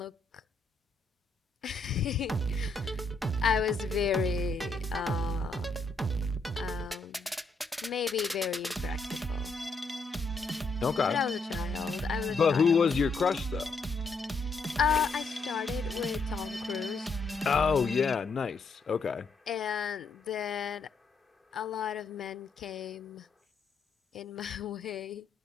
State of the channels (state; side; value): quieter; right; 3.8 dB